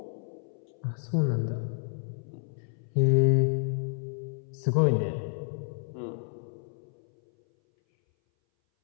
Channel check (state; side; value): silent; right; 58 dB below the other